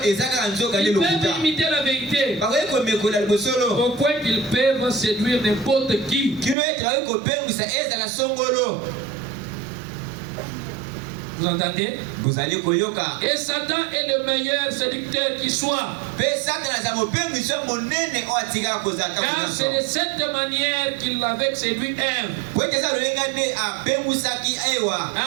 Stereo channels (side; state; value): left; drops out; at 6.6 s